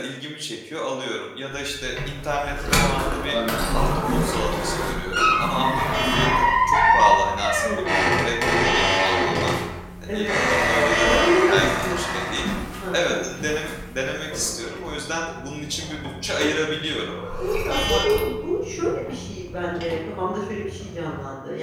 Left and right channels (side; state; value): both; identical; correlation 1.00